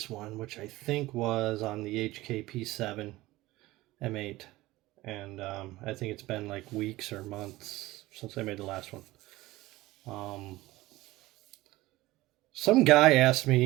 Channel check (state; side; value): quieter; left; 18.4 dB